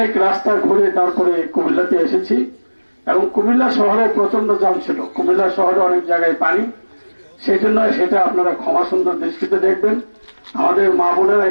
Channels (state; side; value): inverted; both; correlation -1.00